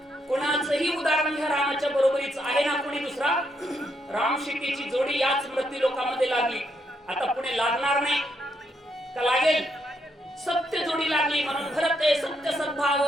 कुणाचंही उदाहरण घ्या रामाच्या बरोबरीच आहे ना कोणी दुसरा? राम सीतेची जोडी याच मृत्यू लोकांमध्ये लागली. आता पुढे लागणार नाही का? लागेल. सत्य जोडी लागली म्हणून भरते सत्य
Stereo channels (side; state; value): both; normal; correlation 0.77